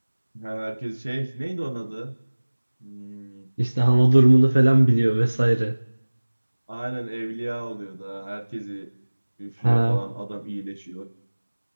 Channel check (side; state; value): both; inverted; correlation -1.00